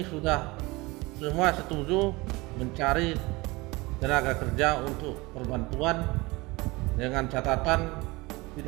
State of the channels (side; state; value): left; quieter; 23.1 dB